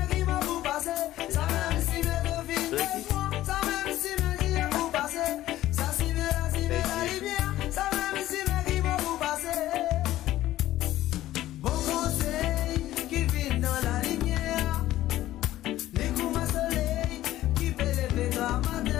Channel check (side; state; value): right; quieter; 14.6 dB